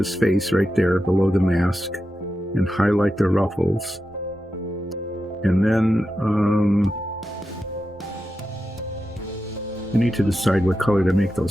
face right there below the mask, and highlight the ruffles. And then I need to decide what color to make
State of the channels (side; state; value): both; normal; correlation 0.90